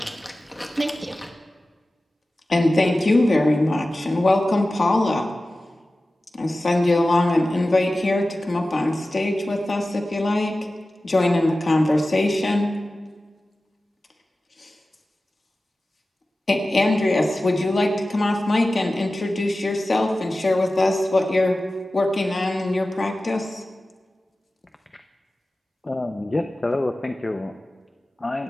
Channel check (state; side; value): normal; both; correlation 0.95